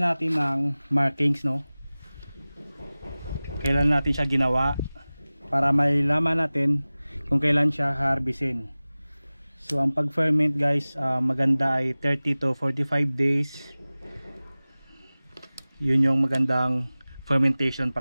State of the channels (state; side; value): inverted; both; correlation -0.98